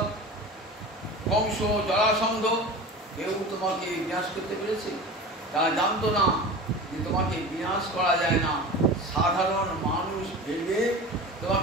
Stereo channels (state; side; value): normal; both; correlation 0.34